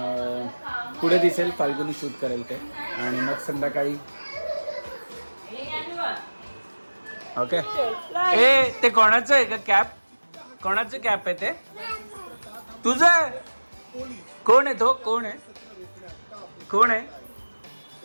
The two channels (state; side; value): inverted; both; correlation -1.00